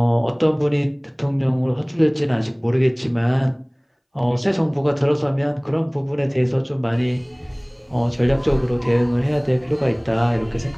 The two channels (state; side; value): identical; both; correlation 1.00